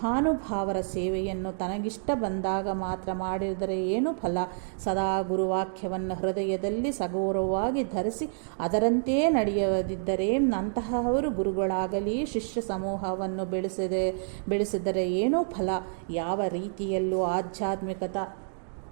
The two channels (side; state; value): left; silent; digital silence